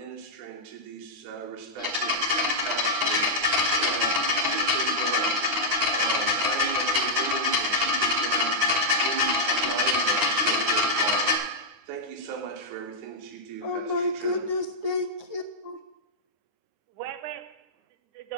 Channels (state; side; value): late; left; 9.7 ms